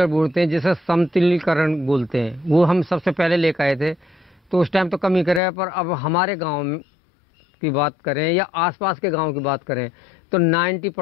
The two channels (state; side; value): drops out; right; at 5.4 s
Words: बोलते हैं जिसे समतलीकरण बोलते हैं, वो हम सबसे पहले लेकर आए थे। तो उस टाइम तो कमी करे, पर अब हमारे गांव की बात करें या आसपास के गांव की बात करें तो